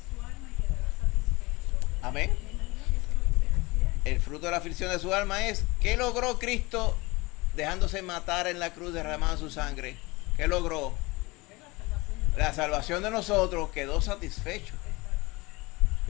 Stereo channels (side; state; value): right; quieter; 23.3 dB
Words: alma y quedará satisfecho. Amén. Me imagino que eso es lo que se refiere. El fruto de la aflicción de su alma es, ¿qué logró Cristo dejándose matar en la cruz, derramando su sangre, ¿qué logró? Es la salvación de La salvación de nosotros, quedó satisfecho.